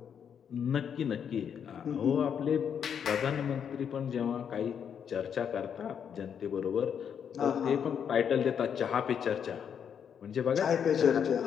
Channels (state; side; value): quieter; right; 7.9 dB